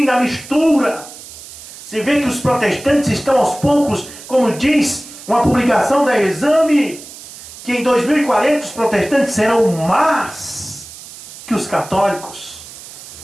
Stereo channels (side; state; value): right; noise; hiss, 16 dB below the sound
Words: a mistura. Você vê que os protestantes estão aos poucos, como diz uma publicação da Exame, que em 2040 os protestantes serão mais que os católicos.